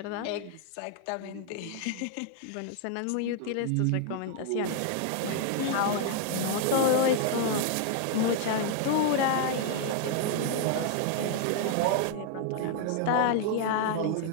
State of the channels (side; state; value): both; different; correlation 0.00